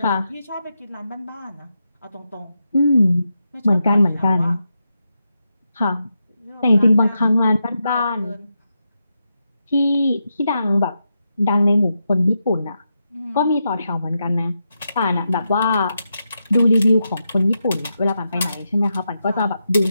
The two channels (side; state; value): both; inverted; correlation -0.86